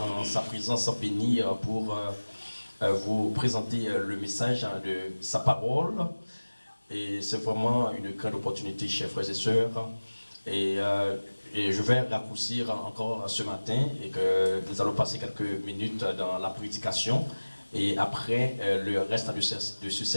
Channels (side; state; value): both; inverted; correlation -1.00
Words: en sa présence bénie pour vous présenter le message de sa parole. Et c'est vraiment une grande opportunité, chers frères et sœurs. Et je vais raccourcir encore ce matin et que nous allons passer quelques minutes dans la prédication. Et après le reste de ce